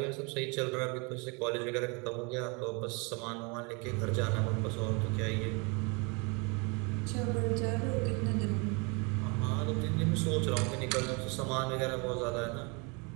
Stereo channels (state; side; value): quieter; left; 31.2 dB